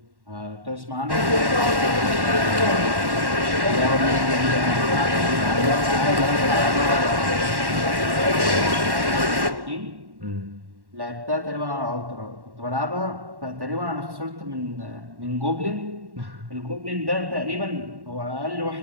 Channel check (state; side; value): late; left; 1.1 ms